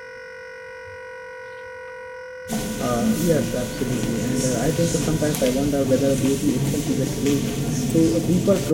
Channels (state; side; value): identical; both; correlation 1.00